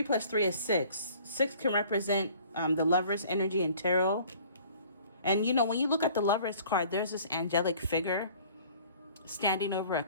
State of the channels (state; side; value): inverted; both; correlation -0.52